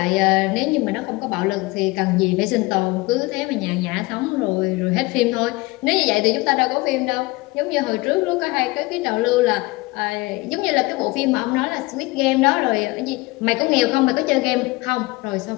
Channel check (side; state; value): right; quieter; 22.5 dB